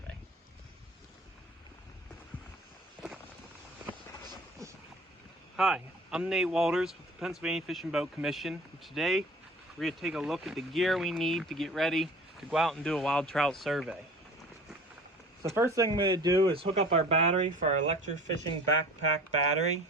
Hi, I'm Nate Walters with the Pennsylvania Fish and Boat Commission. And today, we're going to take a look at the gear we need to get ready to go out and do a wild trout survey. So the first thing I'm going to do is hook up our battery for our electrofishing backpack battery.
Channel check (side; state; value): both; normal; correlation 0.43